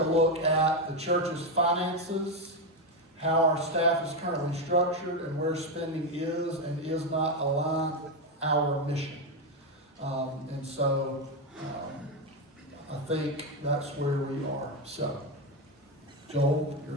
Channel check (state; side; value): normal; both; correlation 0.09